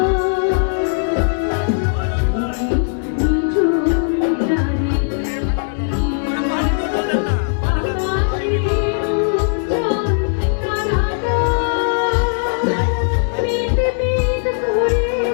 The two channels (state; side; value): silent; right; digital silence